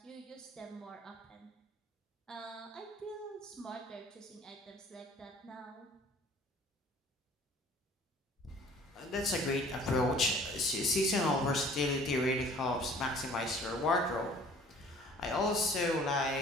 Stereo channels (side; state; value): both; normal; correlation 0.52